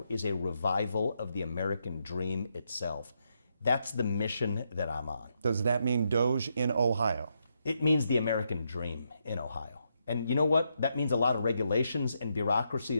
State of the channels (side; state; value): both; inverted; correlation -0.80